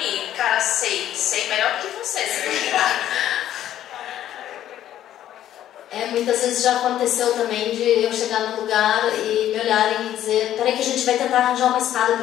Cara, sei melhor do que você, se muitas vezes já aconteceu também de eu chegar no lugar e me olharem e dizer, peraí que a gente vai tentar arranjar uma escada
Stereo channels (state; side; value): quieter; right; 11.9 dB